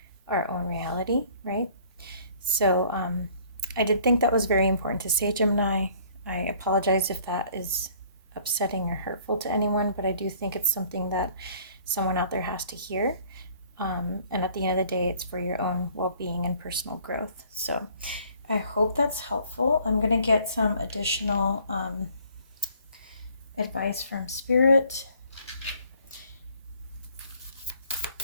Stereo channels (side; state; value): both; inverted; correlation -0.57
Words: our own reality, right? So I did think that was very important to say, Gemini. I apologize if that is upsetting or hurtful to anyone, but I do think it's something that someone out there has to hear. And at the end of the day, it's for your own well-being and personal growth. So I hope that's helpful. I'm going to get some additional advice from Spirit.